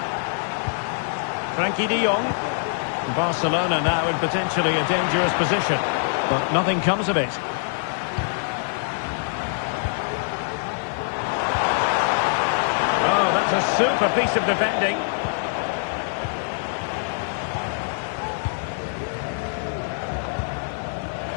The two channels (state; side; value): silent; right; 58 dB below the other